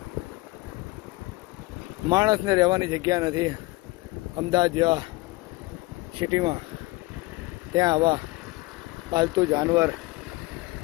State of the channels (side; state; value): right; quieter; 21.3 dB